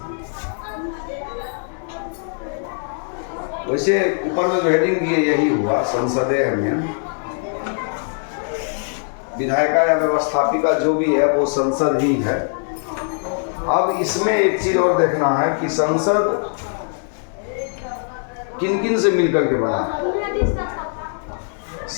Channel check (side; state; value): right; silent; 59 dB below the other